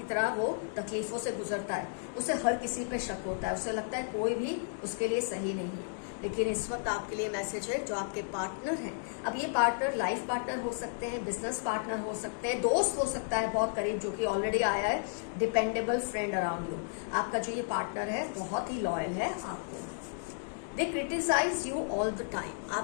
तरह वो तकलीफों से गुजरता है, उसे हर किसी पे शक होता है, उसे लगता है कोई भी उसके लिए सही नहीं है। लेकिन इस वक्त आपके लिए मैसेज है, जो आपके पार्टनर हैं, अब ये पार्टनर लाइफ पार्टनर हो सकते हैं, बिजनेस पार्टनर हो सकते हैं, दोस्त हो सकता है बहुत करीब, जो कि ऑलरेडी आया है, डिपेंडेबल फ्रेंड अराउंड यू। आपका जो ये पार्टनर है बहुत ही लॉयल है आपको। They criticize you all the time.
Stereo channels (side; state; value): right; silent; digital silence